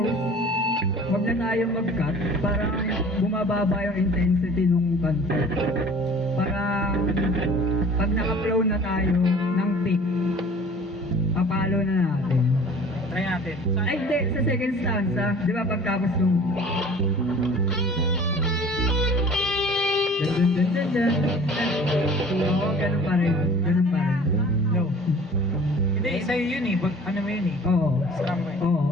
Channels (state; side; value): normal; both; correlation 0.47